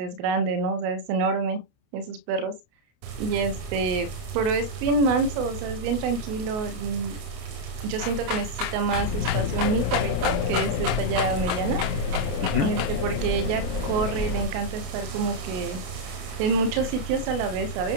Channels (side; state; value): left; late; 28 ms